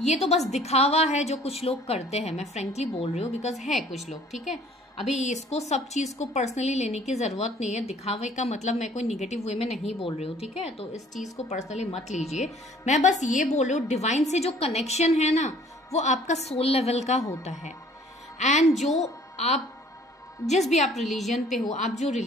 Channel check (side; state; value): both; normal; correlation 0.55